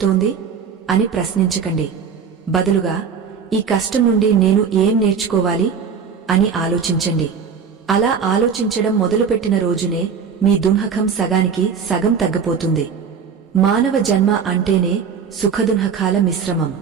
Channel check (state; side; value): quieter; left; 6.5 dB